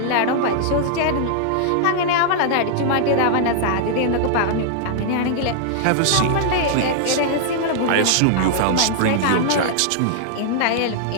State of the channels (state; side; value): different; both; correlation -0.01